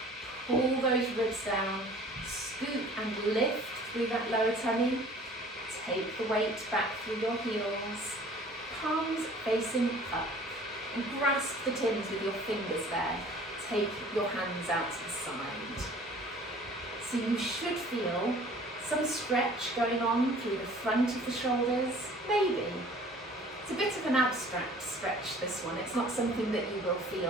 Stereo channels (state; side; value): normal; both; correlation 0.50